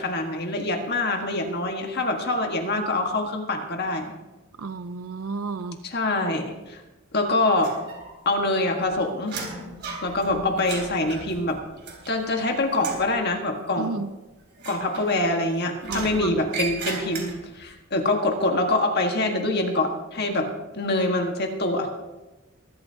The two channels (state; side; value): normal; both; correlation -0.04